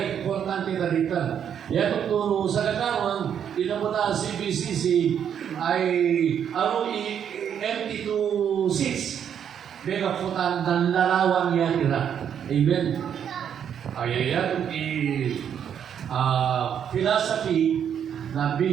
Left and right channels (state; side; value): quieter; left; 8.6 dB